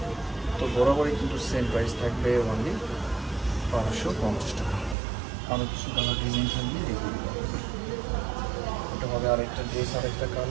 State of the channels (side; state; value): left; drops out; at 5.0 s